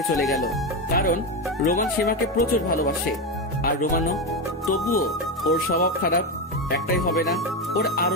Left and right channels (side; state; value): both; normal; correlation 0.13